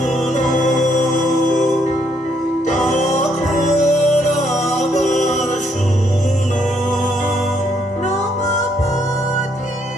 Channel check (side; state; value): both; normal; correlation 0.71